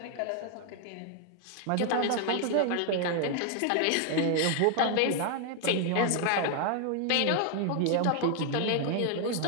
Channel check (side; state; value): both; different; correlation 0.00